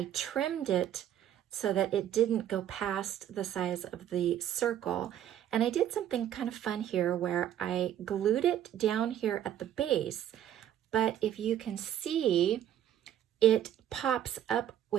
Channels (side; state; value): left; quieter; 10.8 dB